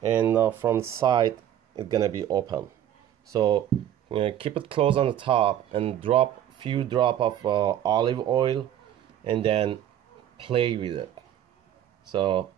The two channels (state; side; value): quieter; left; 11.0 dB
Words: from the side it's gonna be open. So keep it closed on the top and drop few drop of olive oil, and then play with it, so